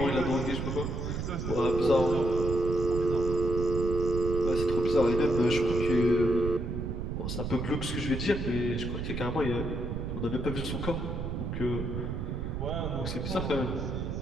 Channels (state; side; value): noise; right; rumble, 3 dB below the sound